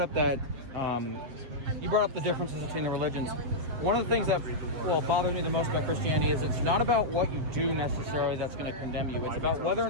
up that you brought up the differences between the religions. one of the things that bothers me the most about Christianity is it's not about what you do necessarily that's going to condemn you. It's about whether or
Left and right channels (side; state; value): left; late; 7.9 ms